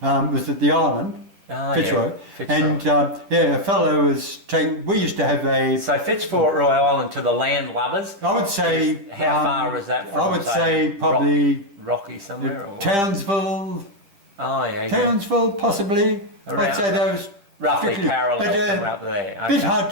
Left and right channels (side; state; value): left; late; 10 ms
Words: was at the island. Fitzroy. And a fellow was we used to have a... So Fitzroy Island to the land lovers? I would say... How far was that from? I would say probably... Rocky somewhere? Townsville. Oh, yeah. Townsville, possibly. I'd say those... Roughly parallel somewhere up there. A bit hard